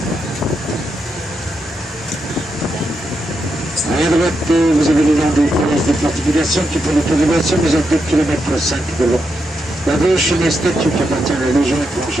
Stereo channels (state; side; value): normal; both; correlation 0.84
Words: À droite, vous avez le long des connaisses des fortifications qui font l'autorisation, vous êtes 2 km 5 de long. La gauche, une statue qui appartient à la Légion